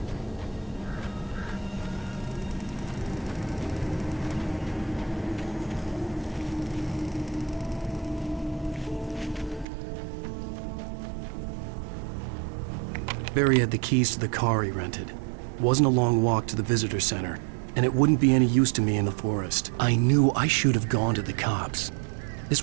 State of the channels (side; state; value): left; drops out; at 9.7 s